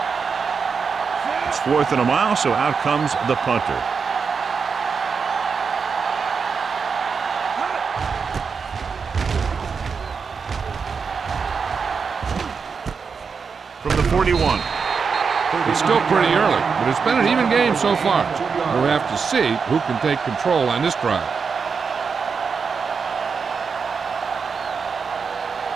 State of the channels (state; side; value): quieter; left; 5.6 dB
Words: It's 4th and a mile, so out comes the punter. From the 41. It's still pretty early, but it's been an even game so far. We'll have to see who can take control on this drive.